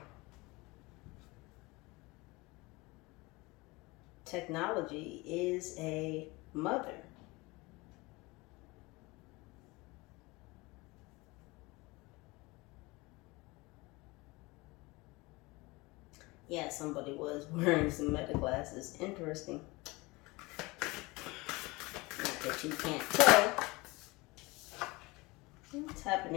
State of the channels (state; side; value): quieter; right; 23.5 dB